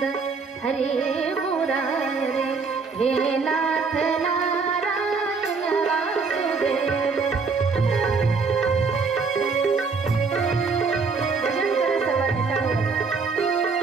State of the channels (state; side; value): quieter; left; 4.8 dB